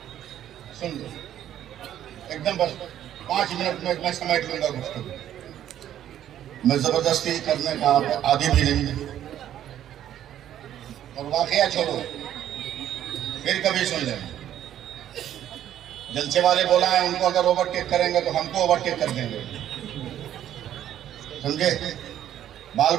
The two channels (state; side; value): quieter; left; 11.2 dB